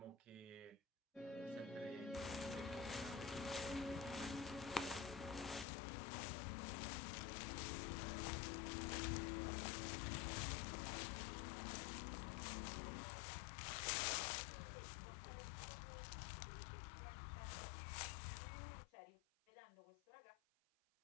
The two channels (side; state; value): right; drops out; at 5.7 s